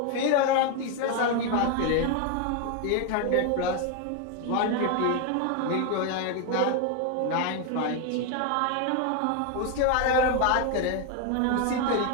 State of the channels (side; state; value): both; different; correlation 0.01